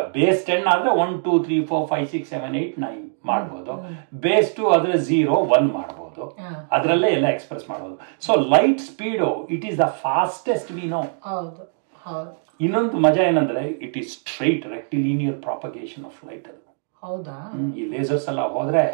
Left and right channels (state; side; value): silent; left; digital silence